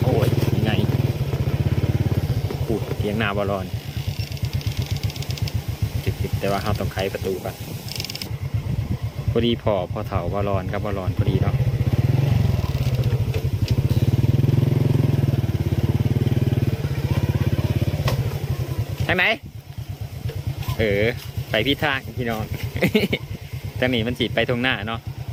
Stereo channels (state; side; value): identical; both; correlation 1.00